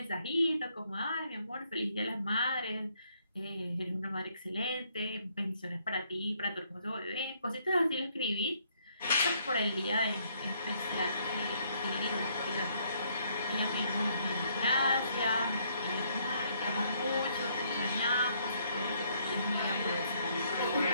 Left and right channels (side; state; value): both; inverted; correlation -0.69